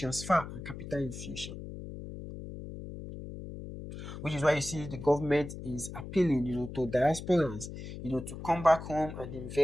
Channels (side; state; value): left; noise; hum, 10 dB below the sound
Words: and capital infusion. Which is why you see the government is appealing, to diasporans, to come back home and